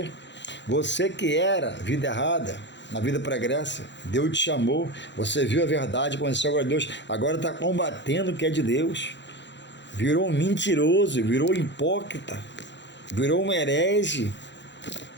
Você que era vida errada, na vida pregressa, Deus te chamou, você viu a verdade, conheceu agora Deus, agora está combatendo o que é de Deus, virou um mentiroso, virou um hipócrita, virou um herege.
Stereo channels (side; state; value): right; late; 0.52 ms